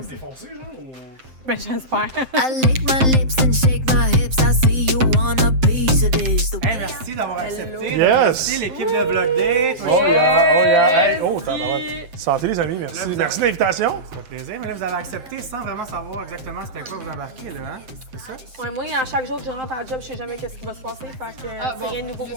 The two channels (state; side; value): late; left; 7.7 ms